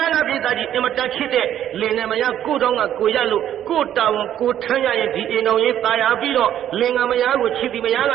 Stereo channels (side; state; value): left; quieter; 11.0 dB